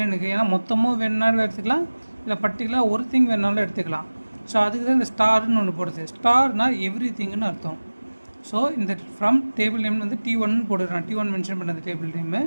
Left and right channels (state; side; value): inverted; both; correlation -1.00